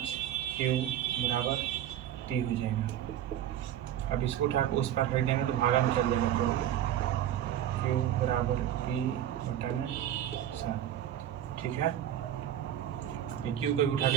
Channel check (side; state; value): left; quieter; 11.2 dB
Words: q बराबर p हो जाएगा। अब इसको उठा के उस पर फेंक देंगे तो भागा में चल जाएगा, तो q बराबर p/7, ठीक है। ये q को भी उठा